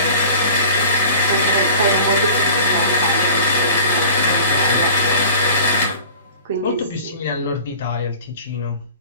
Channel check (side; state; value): both; inverted; correlation -0.41